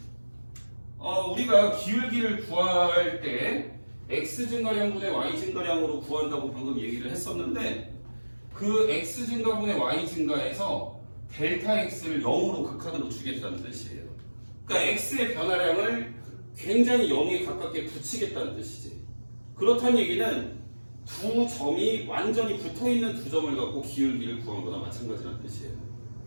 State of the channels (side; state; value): both; inverted; correlation -1.00